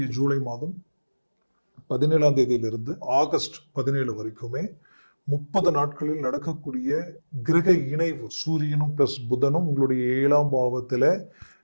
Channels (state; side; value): inverted; both; correlation -1.00